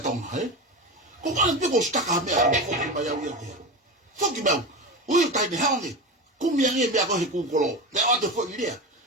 tong ko ka pe ko sta ka me ko ko ba ya wi ki fo ki ba o tai me ha ngi ku mi ngi me ko he ku ko lo le o to fo ni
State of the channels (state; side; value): normal; both; correlation 0.23